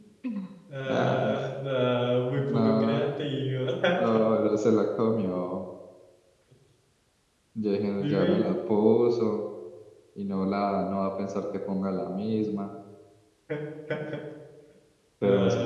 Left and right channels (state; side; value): identical; both; correlation 1.00